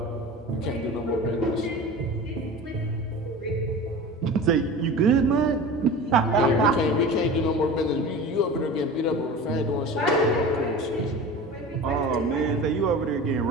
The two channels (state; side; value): normal; both; correlation 0.34